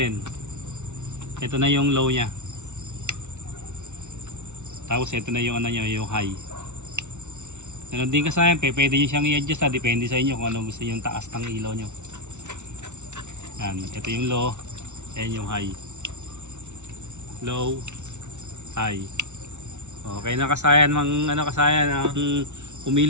Ito na yung low niya. Tapos ito na yung yung high. Ganun din kasayan, pwede nyo siyang i-adjust depende sa inyo kung ano gusto nyo yung taas ng ilaw nyo. Yan, ito yung low, yan yung high. Low, high. Okay na kasayan, kasayan ang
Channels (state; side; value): late; left; 0.83 ms